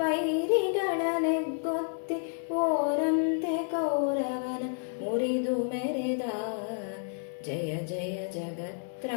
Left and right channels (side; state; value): right; silent; digital silence